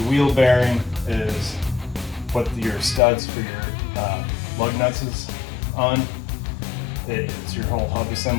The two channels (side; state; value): right; drops out; at 3.0 s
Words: wheel bearing is what your studs for your lug nuts is on. It's your whole hub